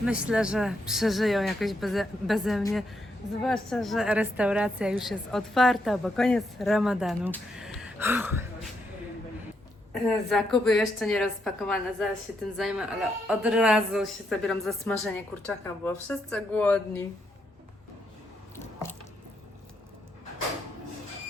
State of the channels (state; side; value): normal; both; correlation 0.79